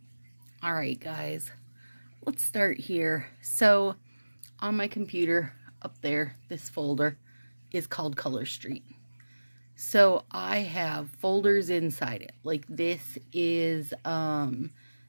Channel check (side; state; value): both; inverted; correlation -1.00